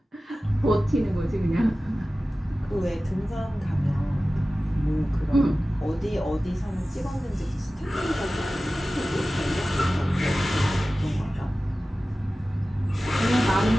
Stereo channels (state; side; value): normal; both; correlation 0.96